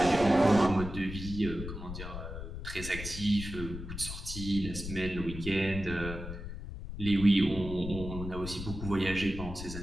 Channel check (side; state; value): left; noise; rumble, 8 dB below the sound